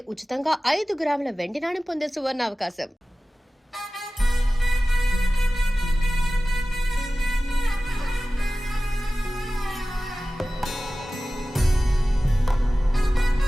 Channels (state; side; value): normal; both; correlation 0.96